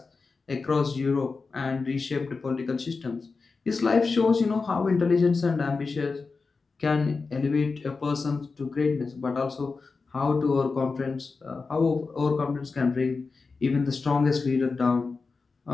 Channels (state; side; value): quieter; right; 4.4 dB